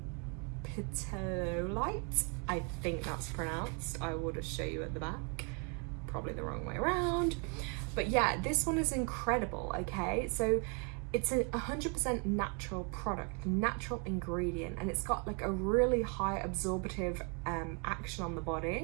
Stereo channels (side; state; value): left; quieter; 35.2 dB